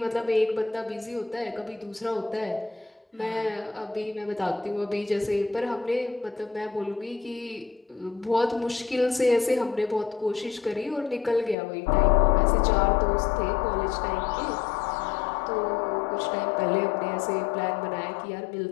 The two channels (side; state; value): right; drops out; at 11.6 s